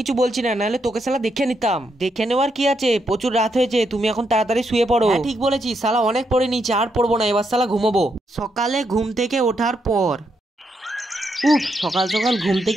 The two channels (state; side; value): normal; both; correlation 0.80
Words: বলছি না, নাহলে তোকে শালা দেখে নিতাম। দেখে নেওয়ার কি আছে, প্রচুর রাত হয়েছে, তুমি এখন তাড়াতাড়ি শুয়ে পড়ো। ঠিক বলেছিস, শালা অনেক পড়ে নিয়েছি, আর পড়বো না, এবার শালা ঘুমোবো। সকালে ঘুম থেকে ওঠার পর সকাল সকাল ঘুম